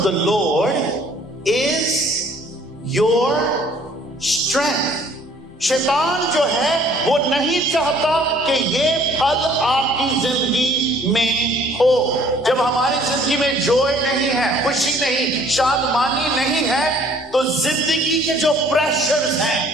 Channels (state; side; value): normal; both; correlation 0.57